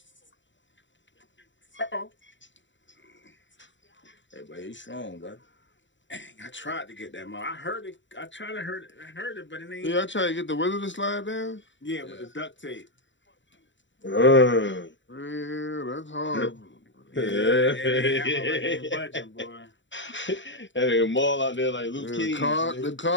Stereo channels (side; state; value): right; late; 0.54 ms